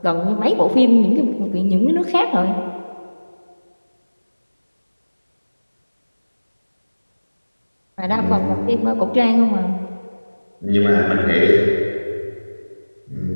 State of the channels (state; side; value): inverted; both; correlation -1.00